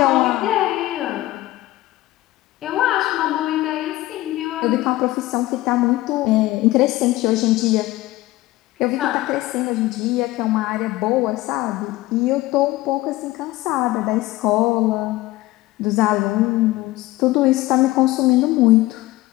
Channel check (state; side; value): quieter; right; 17.8 dB